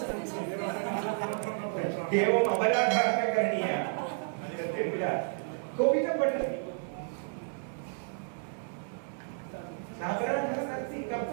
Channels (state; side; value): silent; left; 57 dB below the other